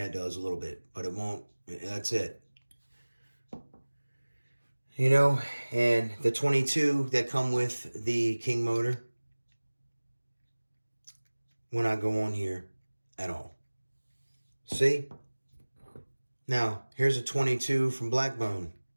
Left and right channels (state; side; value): inverted; both; correlation -1.00